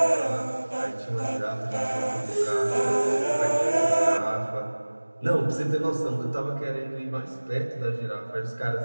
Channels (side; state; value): both; inverted; correlation -1.00